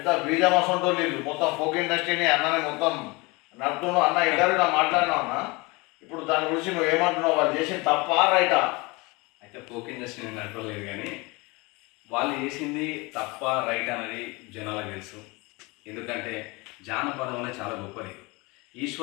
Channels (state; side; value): quieter; right; 25.5 dB